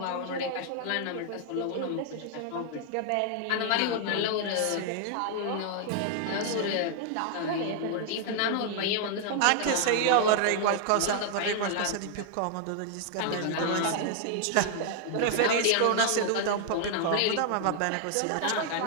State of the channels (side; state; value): both; different; correlation 0.00